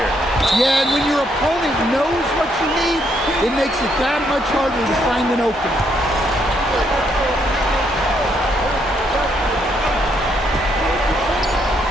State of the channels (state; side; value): normal; both; correlation 0.74